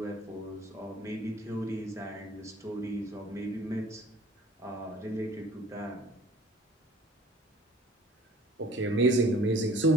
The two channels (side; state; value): both; normal; correlation 0.50